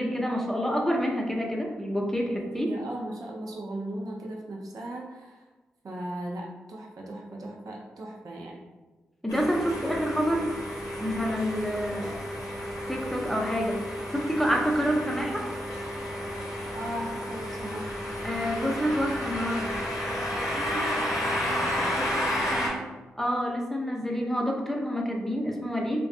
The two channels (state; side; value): normal; both; correlation 0.83